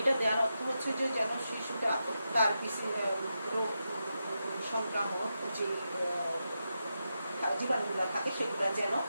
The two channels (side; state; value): both; inverted; correlation -0.87